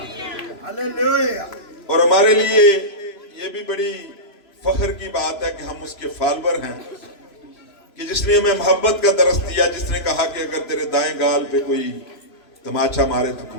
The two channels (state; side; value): late; right; 3.0 ms